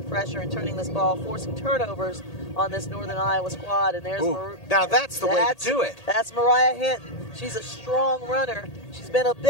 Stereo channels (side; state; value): right; late; 1.8 ms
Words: pressure and turning this ball, forcing turnovers on this Northern Iowa squad. And there's now that's the way to do it. That's Mariah Hinton. She's a strong runner. She's been a